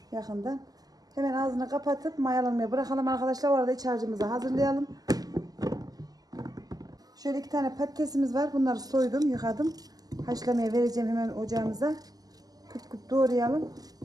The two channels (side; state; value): left; late; 0.18 ms